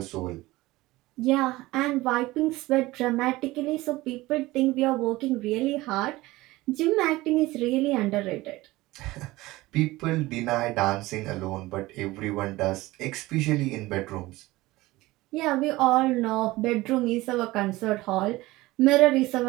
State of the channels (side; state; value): left; quieter; 19.2 dB